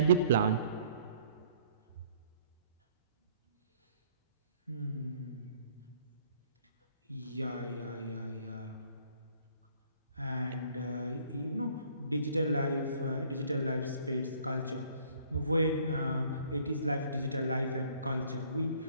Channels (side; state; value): both; inverted; correlation -0.59